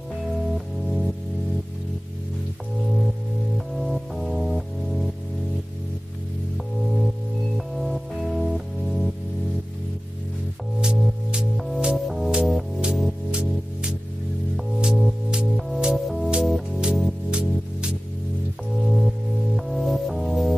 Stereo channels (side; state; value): both; normal; correlation 0.97